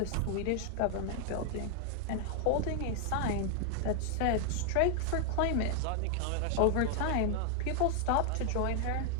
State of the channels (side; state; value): both; different; correlation 0.00